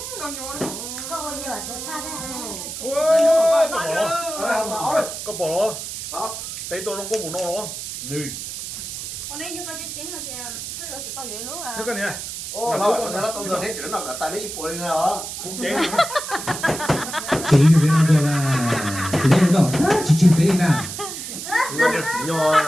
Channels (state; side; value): noise; right; hiss, 7 dB below the sound